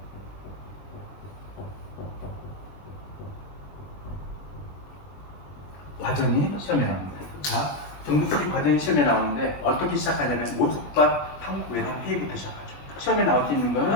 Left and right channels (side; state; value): right; late; 21 ms